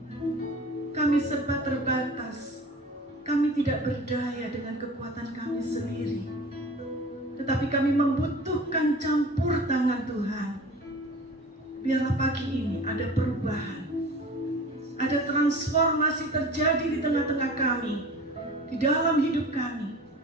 Kami serba terbatas, kami tidak berdaya dengan kekuatan kami sendiri, tetapi kami membutuhkan campur tangan Tuhan. Biarlah pagi ini ada perubahan, ada transformasi terjadi di tengah-tengah kami, di dalam hidup kami,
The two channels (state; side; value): normal; both; correlation 0.40